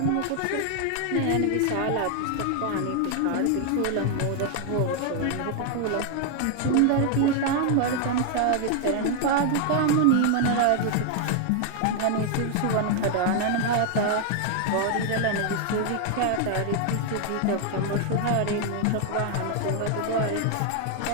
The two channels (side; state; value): both; different; correlation 0.00